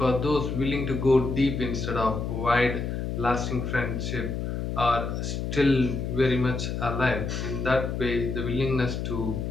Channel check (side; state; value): left; noise; hum, 3 dB below the sound